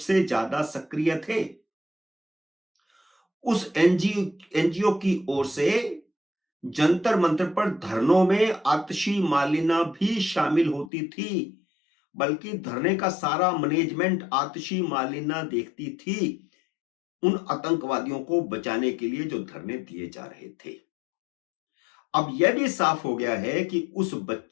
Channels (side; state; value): right; drops out; at 10.9 s